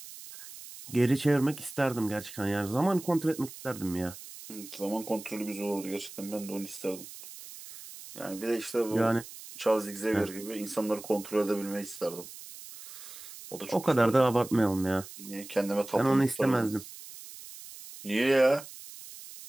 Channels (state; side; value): noise; right; hiss, 15 dB below the sound